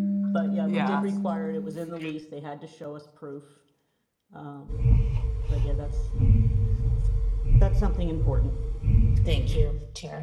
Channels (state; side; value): identical; both; correlation 1.00